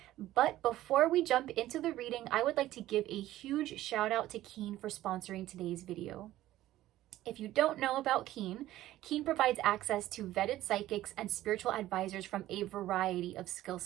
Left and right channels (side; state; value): left; quieter; 14.8 dB